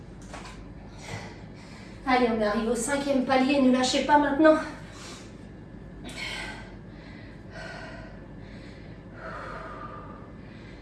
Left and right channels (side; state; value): both; identical; correlation 1.00